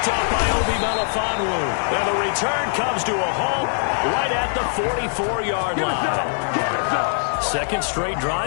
up by Obi Melifonwu. And the return comes to a halt right at the 44-yard line. Second straight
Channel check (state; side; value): silent; right; digital silence